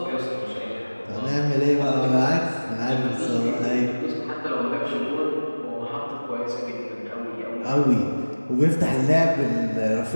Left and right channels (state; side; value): inverted; both; correlation -1.00